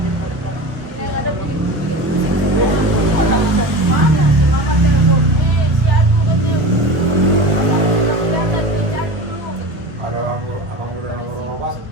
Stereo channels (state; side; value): late; left; 1.3 ms